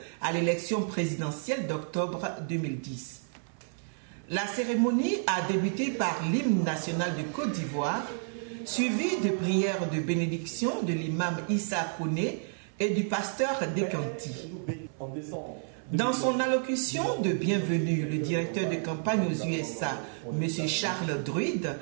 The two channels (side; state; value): left; silent; 58 dB below the other